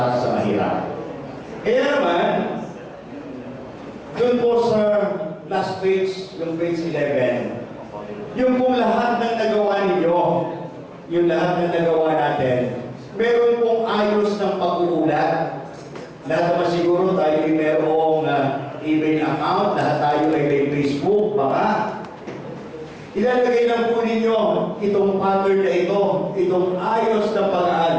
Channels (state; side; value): identical; both; correlation 1.00